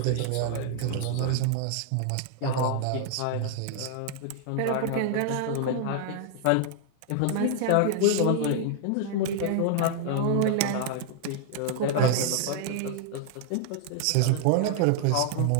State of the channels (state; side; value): different; both; correlation 0.00